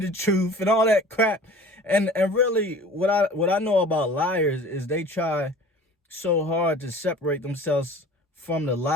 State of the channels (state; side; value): normal; both; correlation 0.44